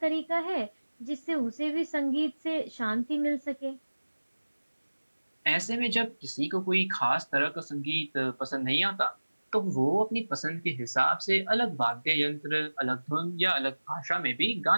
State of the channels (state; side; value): inverted; both; correlation -1.00